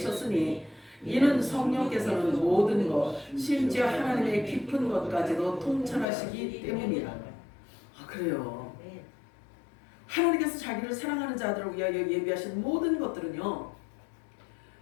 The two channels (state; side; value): drops out; right; at 6.1 s